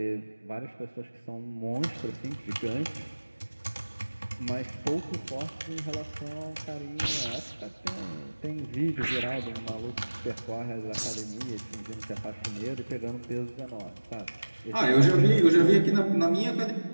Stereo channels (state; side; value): inverted; both; correlation -1.00